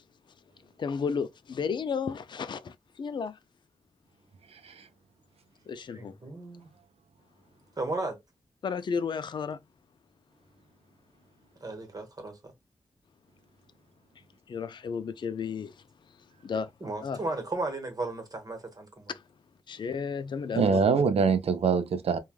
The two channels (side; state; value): both; normal; correlation 0.56